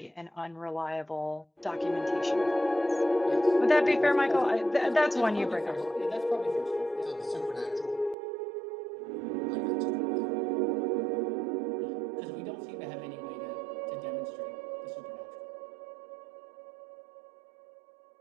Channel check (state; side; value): drops out; left; at 8.2 s